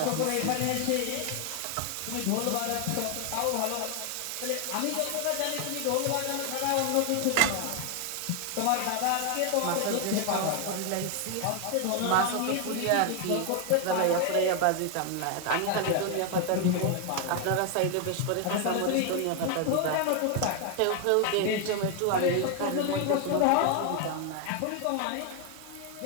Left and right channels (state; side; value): different; both; correlation 0.00